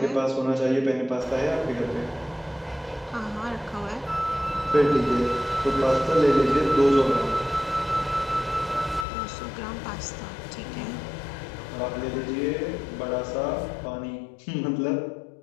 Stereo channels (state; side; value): drops out; right; at 9.1 s